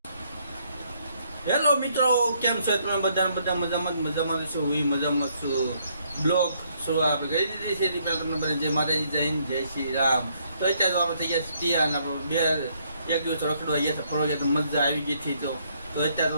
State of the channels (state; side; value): inverted; both; correlation -0.70